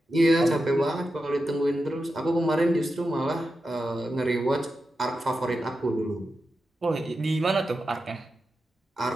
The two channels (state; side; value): normal; both; correlation 0.90